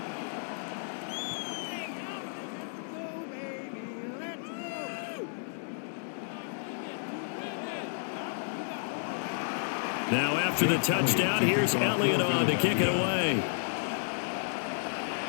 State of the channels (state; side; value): silent; right; digital silence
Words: Now after the touchdown, here's Elliott on to kick it away.